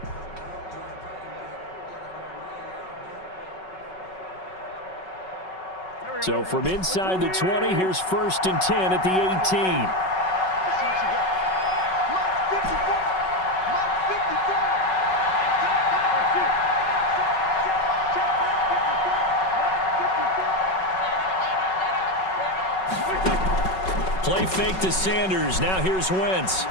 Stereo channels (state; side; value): late; right; 5.3 ms